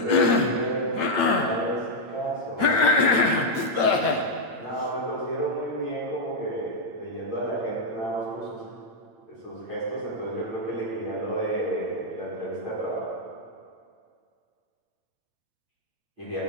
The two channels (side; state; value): left; late; 8.9 ms